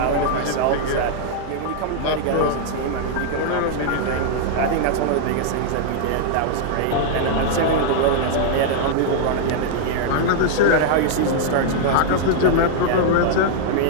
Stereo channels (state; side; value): different; both; correlation -0.01